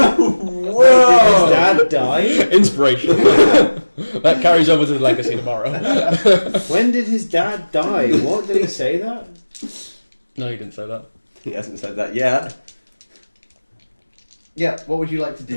Whoa! Did his dad die? Inspiration. That carries over to the legacy tomorrow. When did his dad die? What did he say that? No, you didn't say that. He hasn't said that yet. Yeah, what would you like to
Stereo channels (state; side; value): inverted; both; correlation -1.00